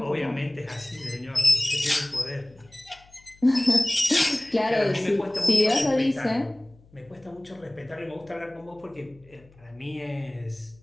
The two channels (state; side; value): noise; left; hum, 27 dB below the sound